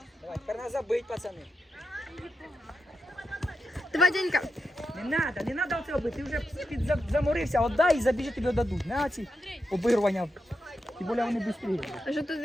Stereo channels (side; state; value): both; normal; correlation 0.87